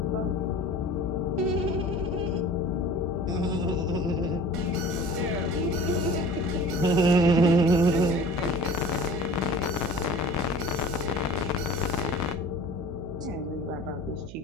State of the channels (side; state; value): right; noise; hum, 14 dB below the sound